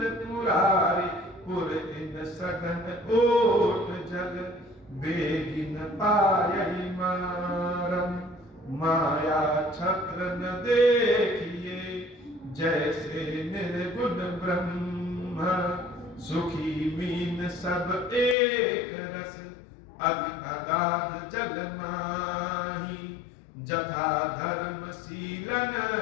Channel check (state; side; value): drops out; right; at 18.4 s